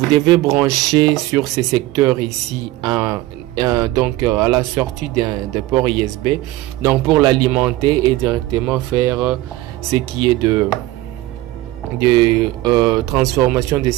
devez brancher sur ces secteurs ici à la sortie d'un port USB, pour l'alimenter et directement faire ce qui est de transformation des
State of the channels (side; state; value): left; quieter; 17.1 dB